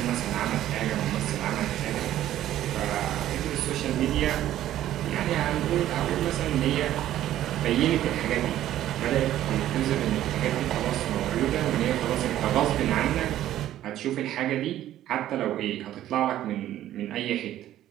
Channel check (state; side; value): quieter; left; 12.8 dB